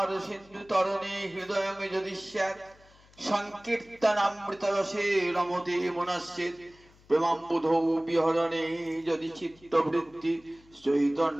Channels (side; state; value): left; noise; hum, 28 dB below the sound